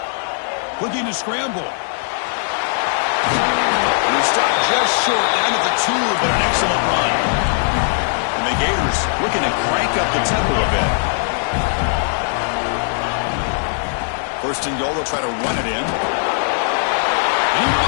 Looking to scramble. And he stopped just short down at the 2, but an excellent run. The Gators looking to crank up the tempo a bit. 1st and goal, they'll try to run it in. And he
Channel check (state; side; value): silent; right; digital silence